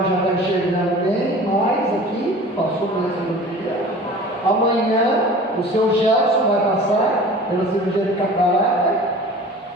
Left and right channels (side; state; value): both; normal; correlation 0.42